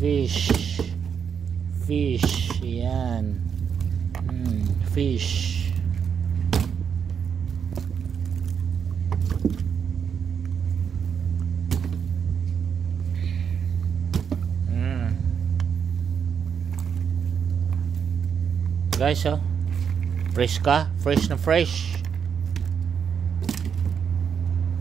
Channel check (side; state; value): left; quieter; 7.2 dB